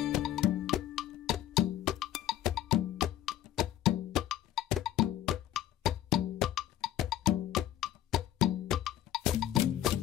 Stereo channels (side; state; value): right; quieter; 12.5 dB